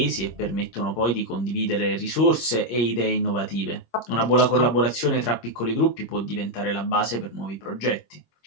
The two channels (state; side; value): late; right; 26 ms